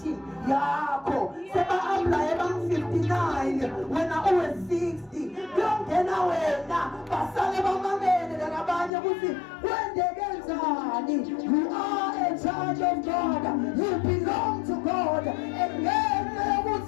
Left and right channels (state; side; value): drops out; right; at 8.9 s